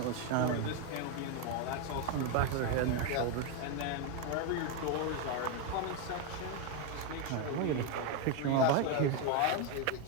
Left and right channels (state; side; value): different; both; correlation 0.02